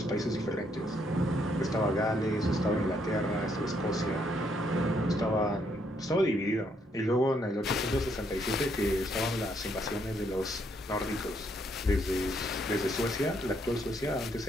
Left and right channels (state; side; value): normal; both; correlation 0.72